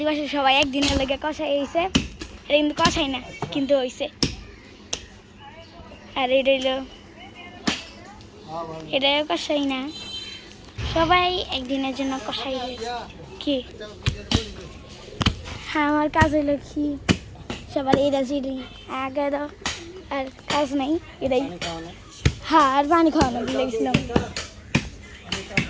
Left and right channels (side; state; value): both; identical; correlation 1.00